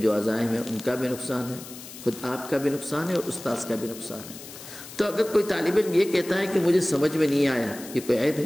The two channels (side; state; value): left; noise; hiss, 15 dB below the sound